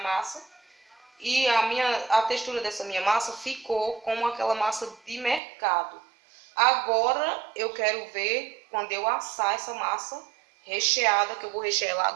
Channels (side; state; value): left; drops out; at 5.4 s